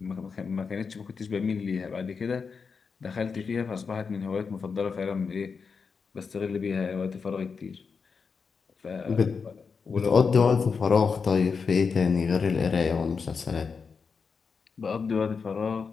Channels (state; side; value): quieter; right; 5.4 dB